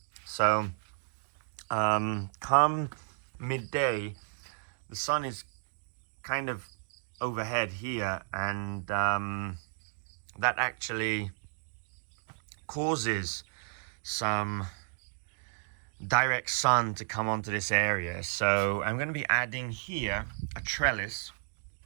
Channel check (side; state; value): left; silent; digital silence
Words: So come midday, the sun is kind of overhead here, and that actually causes some direct sun to come onto this area. So I'm going to be adding here a trellis.